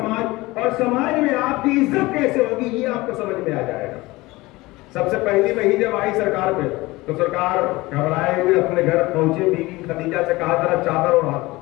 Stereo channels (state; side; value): quieter; right; 20.7 dB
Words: اور سماج میں آپ کی عزت کیسے ہوگی، یہ آپ کو سمجھ میں آ جائے گا۔ سب سے پہلی وحی جب آئی سرکار پہ تو سرکار گھبرائے ہوئے اپنے گھر پہنچے، بیوی خدیجہ سے کہا ذرا چادر اڑا۔